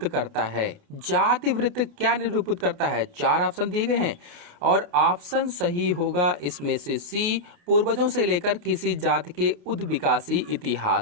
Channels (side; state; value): left; late; 28 ms